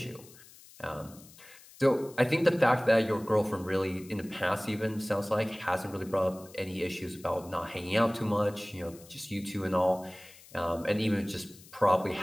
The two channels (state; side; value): noise; left; hiss, 22 dB below the sound